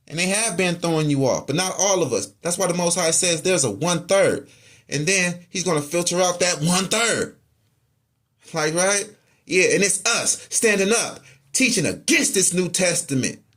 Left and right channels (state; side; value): identical; both; correlation 1.00